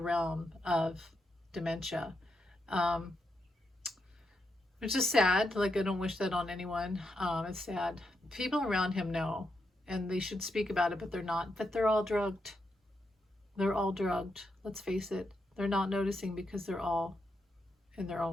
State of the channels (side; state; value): both; normal; correlation 0.83